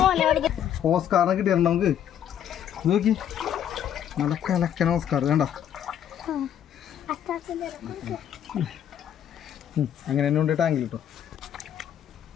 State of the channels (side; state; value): right; quieter; 9.8 dB